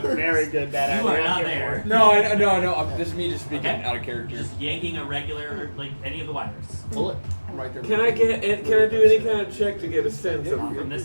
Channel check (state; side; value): inverted; both; correlation -1.00